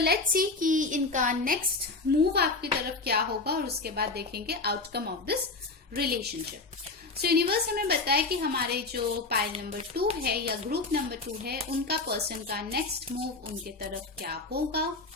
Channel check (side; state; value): right; quieter; 3.6 dB